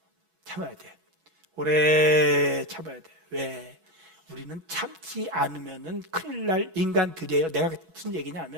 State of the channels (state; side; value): late; left; 6.1 ms